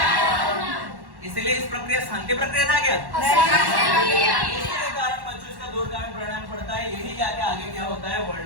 इसलिए इस प्रक्रिया शांति प्रक्रिया था क्या? इसके कारण बच्चों इसका दूरगामी परिणाम पड़ता है, यही जाके आगे क्या होता है,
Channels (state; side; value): late; left; 1.1 ms